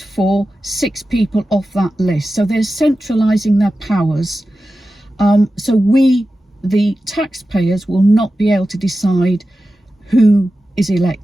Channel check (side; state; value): both; normal; correlation 0.93